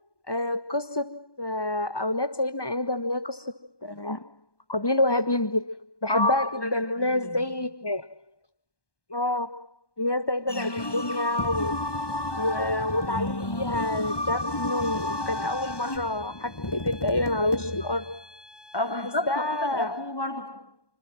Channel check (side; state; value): right; late; 1.2 ms